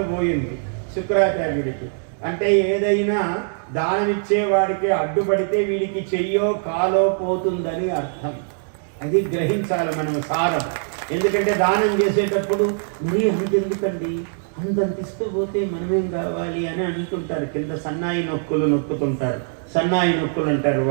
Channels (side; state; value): left; silent; digital silence